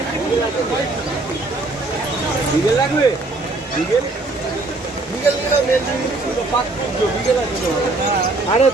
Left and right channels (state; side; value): quieter; left; 3.1 dB